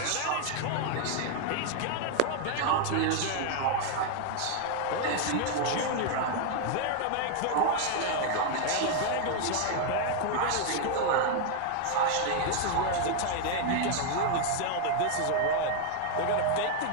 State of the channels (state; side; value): different; both; correlation 0.00